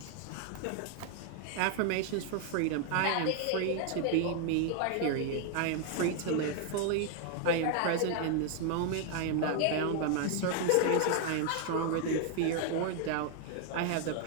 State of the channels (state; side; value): different; both; correlation 0.00